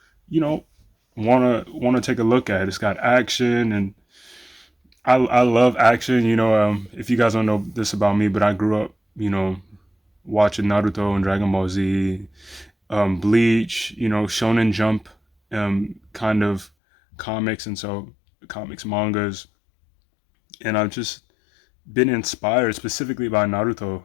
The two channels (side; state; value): right; drops out; at 16.7 s